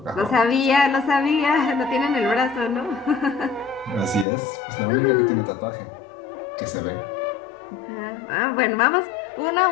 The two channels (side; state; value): right; drops out; at 4.2 s